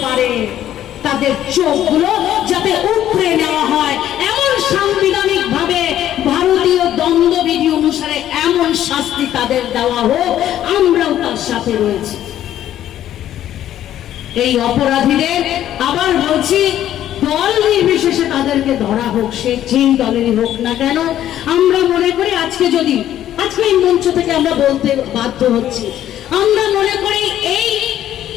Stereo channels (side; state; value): right; quieter; 11.8 dB